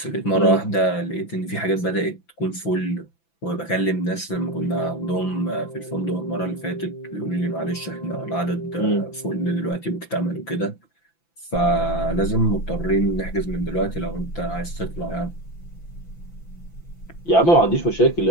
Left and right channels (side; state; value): right; late; 5.9 ms